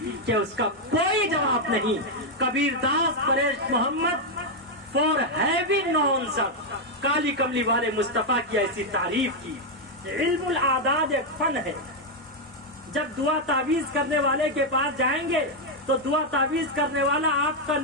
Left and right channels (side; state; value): both; normal; correlation 0.01